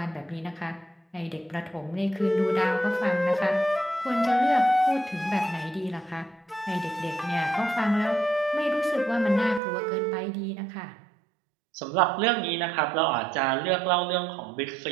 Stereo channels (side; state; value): left; drops out; at 9.6 s